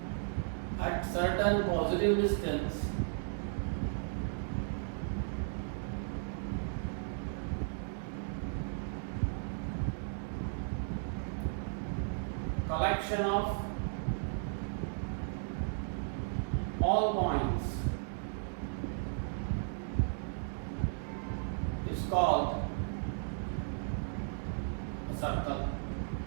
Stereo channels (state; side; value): silent; left; digital silence